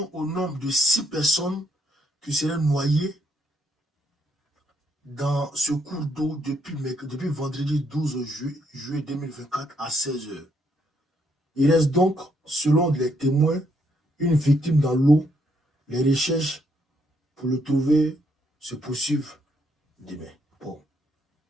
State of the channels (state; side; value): normal; both; correlation 0.73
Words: au nombre de 6 personnes qui seraient noyées dans ce cours d'eau depuis vendredi 12 juillet 2024 à 16 h. Il reste donc, selon les témoins, une victime dans l'eau. Les recherches pour le trouver se poursuivent demain. Bon,